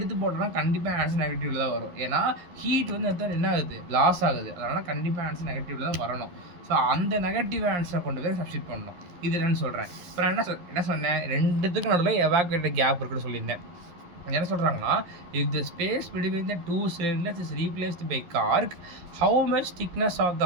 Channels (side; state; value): left; late; 11 ms